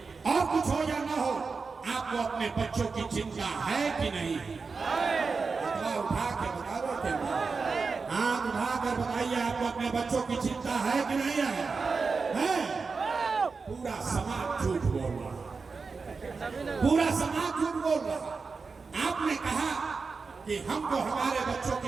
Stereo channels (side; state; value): left; quieter; 4.6 dB